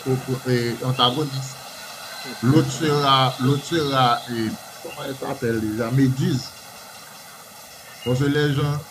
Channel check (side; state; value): both; identical; correlation 1.00